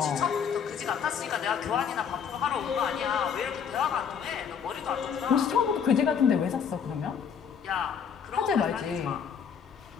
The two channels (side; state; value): right; quieter; 7.2 dB